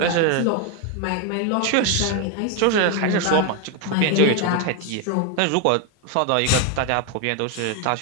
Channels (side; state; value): both; different; correlation 0.01